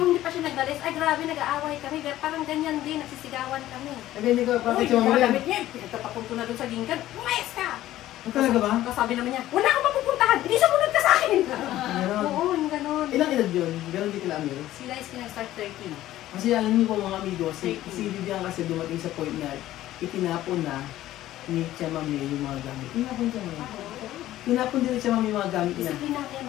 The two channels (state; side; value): quieter; right; 14.3 dB